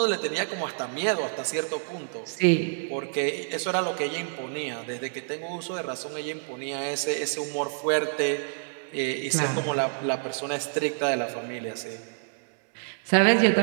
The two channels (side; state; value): left; silent; digital silence